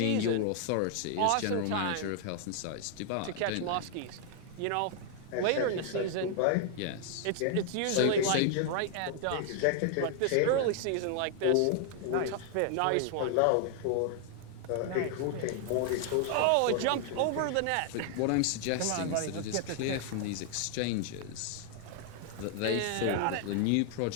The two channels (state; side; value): different; both; correlation 0.00